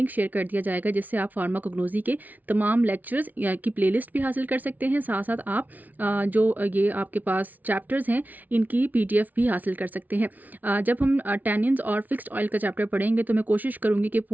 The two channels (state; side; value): late; left; 0.078 ms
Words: शेयर कर दिया जाएगा, जिससे आप फार्माकोग्नोसी के तमाम लेक्चर्स की प्लेलिस्ट भी हासिल कर सकते हैं। साथ साथ आप जो ये आपके पास चैप्टर्स हैं इनकी पीडीएफ भी हासिल कर सकते हैं। जब हम टैनिन्स और फिक्स्ड ऑयल का चैप्टर पढ़ेंगे तो मैं कोशिश करूँगी कि